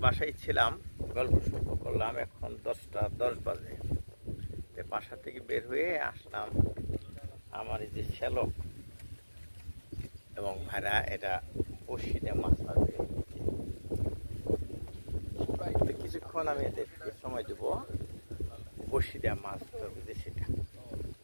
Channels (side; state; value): both; inverted; correlation -1.00